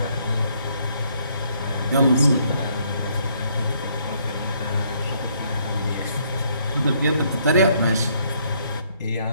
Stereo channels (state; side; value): inverted; both; correlation -0.69